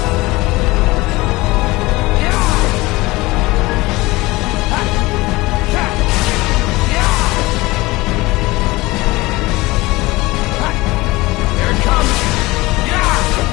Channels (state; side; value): quieter; right; 21.0 dB